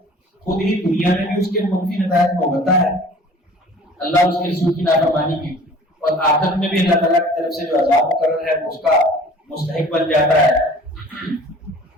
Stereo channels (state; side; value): normal; both; correlation 0.48